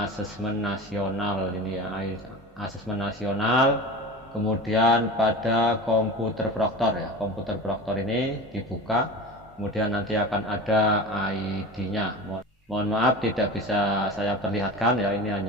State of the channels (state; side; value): normal; both; correlation 0.32